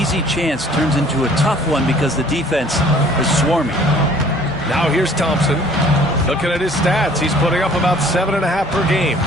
easy chance turns into a tough one because the defense is swarming. Now here's Thompson. Looking at his stats, he's putting up about 7.5 per game.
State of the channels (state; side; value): normal; both; correlation 0.54